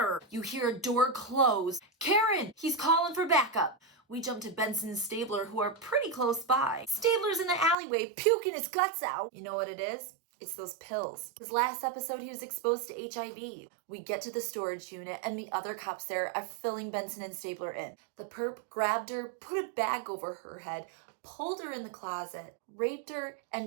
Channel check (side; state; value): left; drops out; at 7.8 s